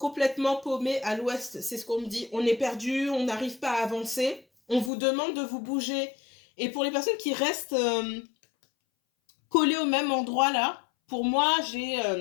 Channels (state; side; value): drops out; right; at 4.9 s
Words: paumé à l'ouest, c'est ce qu'on me dit. On est perdu, on n'arrive pas à avancer. On vous demande de vous bouger. Et pour les personnes qui restent collées au même endroit, là, pour moi,